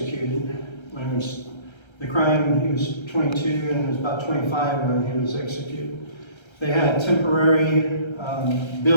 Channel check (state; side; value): late; right; 1.3 ms